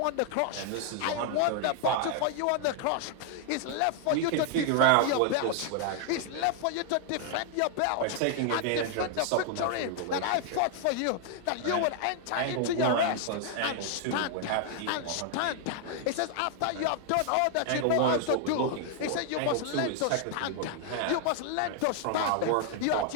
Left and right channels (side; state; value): both; different; correlation 0.00